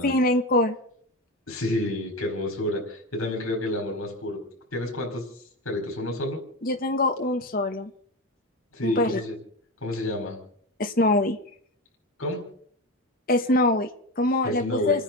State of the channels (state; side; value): normal; both; correlation 0.21